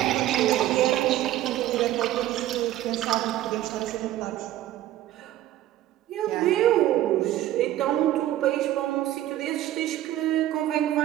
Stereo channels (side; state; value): left; quieter; 13.7 dB